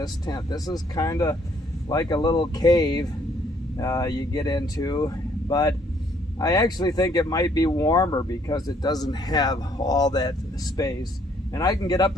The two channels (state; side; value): normal; both; correlation 0.65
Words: tent. This is kind of like a little cave you get into, but I actually think it might be warmer because it doesn't have all that space. And I can get